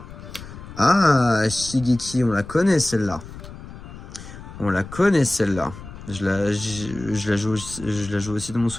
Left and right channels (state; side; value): noise; left; rumble, 14 dB below the sound